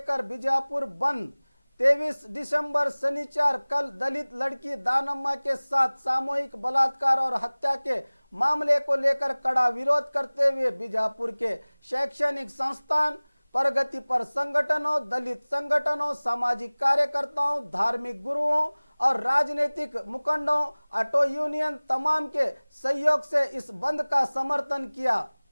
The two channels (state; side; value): inverted; both; correlation -1.00